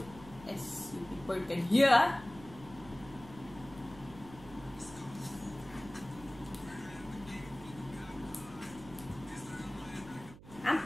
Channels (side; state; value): right; noise; hum, 18 dB below the sound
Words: as you people can hear.